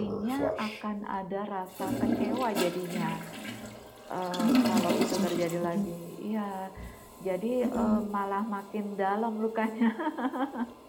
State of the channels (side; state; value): both; identical; correlation 1.00